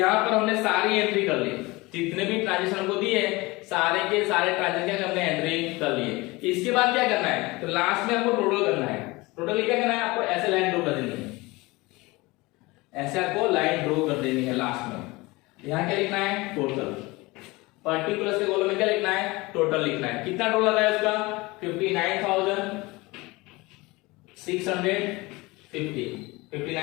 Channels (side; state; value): right; quieter; 22.6 dB